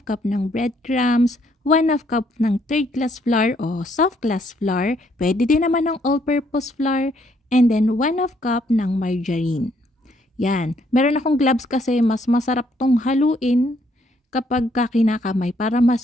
ng breadcrumbs, 1/2 cup ng third class flour o soft class flour, pwede din naman ng all-purpose flour, and then 1/2 cup ng margarine. Yan. Meron akong gloves kasi mas masarap tong haluin kapag kinakamay para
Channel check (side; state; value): both; normal; correlation 0.69